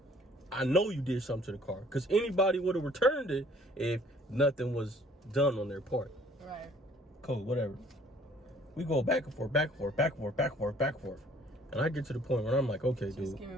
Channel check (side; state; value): both; normal; correlation 0.57